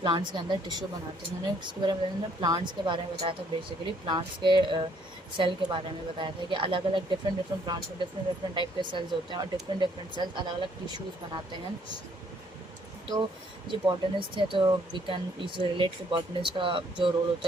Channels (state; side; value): normal; both; correlation 0.65